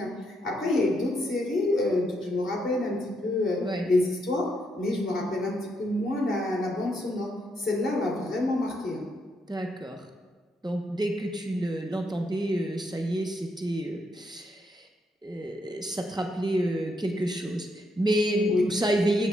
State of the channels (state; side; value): normal; both; correlation 0.77